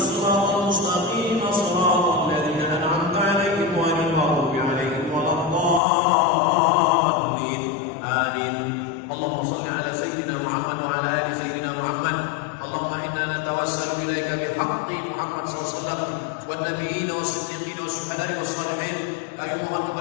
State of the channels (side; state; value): right; drops out; at 5.8 s